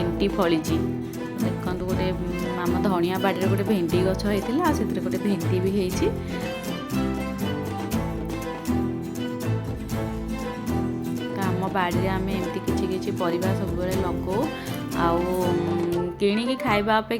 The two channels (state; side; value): identical; both; correlation 1.00